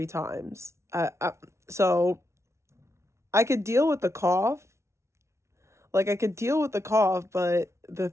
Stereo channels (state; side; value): late; left; 0.13 ms